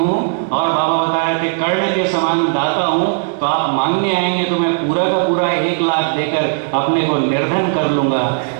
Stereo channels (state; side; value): silent; left; 65 dB below the other